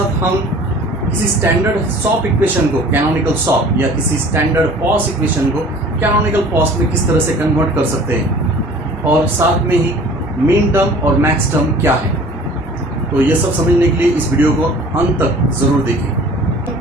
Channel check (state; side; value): normal; both; correlation 0.47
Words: हम किसी स्टैंडर्ड सॉप इक्वेशन को कैनोनिकल सॉप या किसी स्टैंडर्ड पॉस इक्वेशन को कैनोनिकल पॉस में किस तरह से कन्वर्ट कर सकते हैं और साथ में ही मीन टर्म और मैक्स टर्म क्या है। तो ये सब समझने के लिए इस वीडियो को अंत तक जरूर